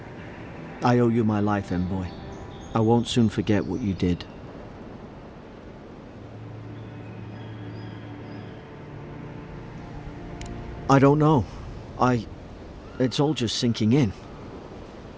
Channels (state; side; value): identical; both; correlation 1.00